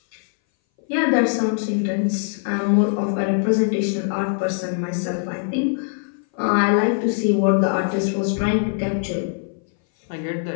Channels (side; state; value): right; silent; 60 dB below the other